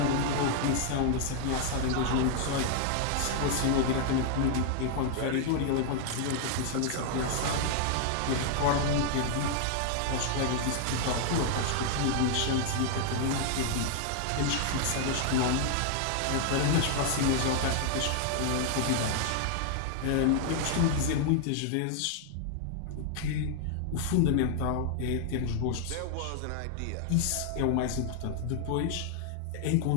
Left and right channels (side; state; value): both; different; correlation 0.00